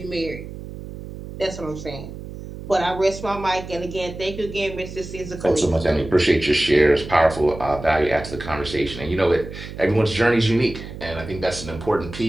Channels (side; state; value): right; noise; hum, 11 dB below the sound